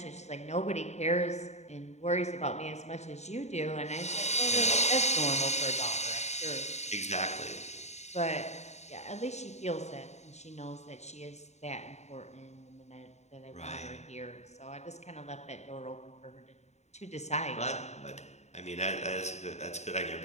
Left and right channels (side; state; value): right; late; 0.32 ms